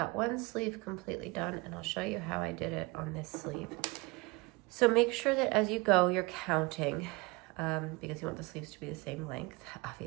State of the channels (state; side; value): quieter; left; 25.6 dB